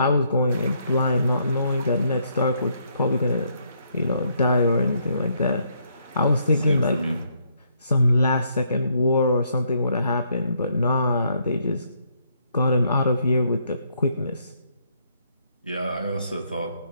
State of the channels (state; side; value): inverted; both; correlation -0.72